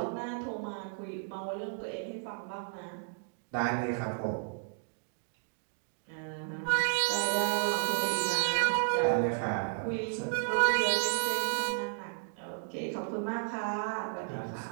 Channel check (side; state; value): left; silent; digital silence